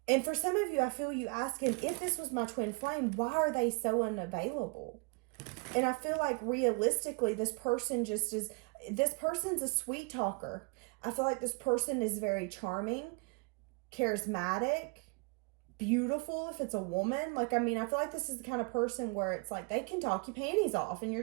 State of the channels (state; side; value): quieter; left; 32.0 dB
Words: And for some of you, I feel you asking, if this was my twin flame, why are they so unavailable? And I feel like realistically, this person's a sweet talker. I feel like this person is very charming, charismatic, beautiful if it's a woman. Like, I mean, I feel like this is the kind of person where it's like they can talk your panties off and